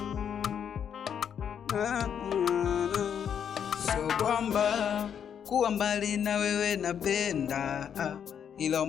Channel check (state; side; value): quieter; right; 8.3 dB